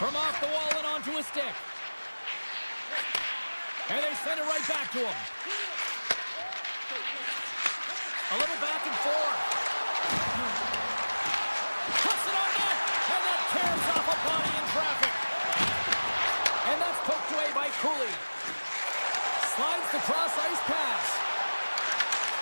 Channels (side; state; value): both; inverted; correlation -1.00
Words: From off the wall and onto his stick. And they send it right back to him. A little back and forth. Puts it on net, and that tears off a body in traffic. And that's poked away by Cooley. Slides the cross-ice pass.